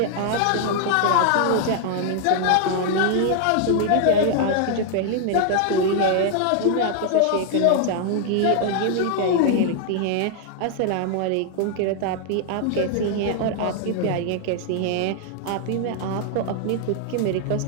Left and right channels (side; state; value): both; different; correlation 0.00